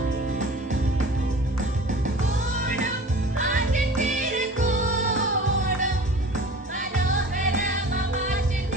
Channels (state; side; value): normal; both; correlation 0.41